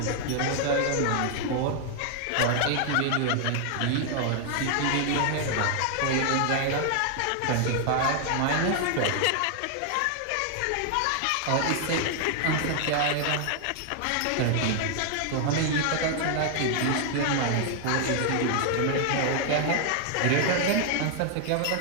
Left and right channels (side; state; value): both; different; correlation 0.00